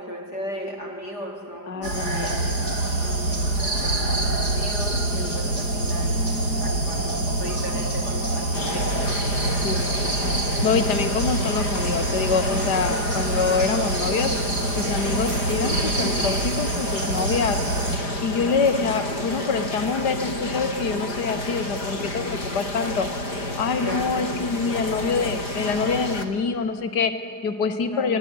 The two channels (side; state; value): right; late; 4.9 ms